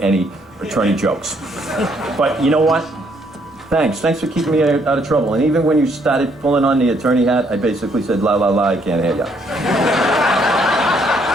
any attorney jokes. But you know what? Thanks for keeping me out of trouble. And even when you started pulling on the attorney hat, I basically said, la, la, la, I can't hear ya.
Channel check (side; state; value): both; normal; correlation 0.69